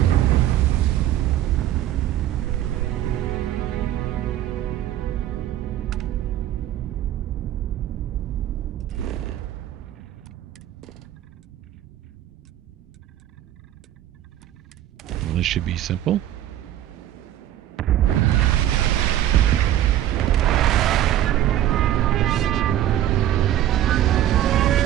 Well, this should be simple.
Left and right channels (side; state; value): left; quieter; 12.4 dB